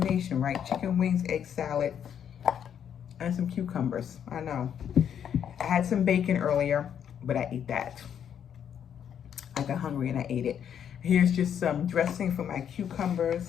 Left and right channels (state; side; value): quieter; right; 8.8 dB